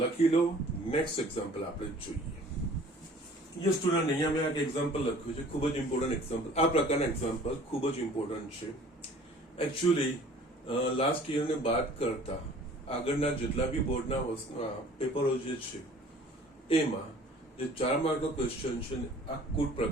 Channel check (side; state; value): both; normal; correlation 0.50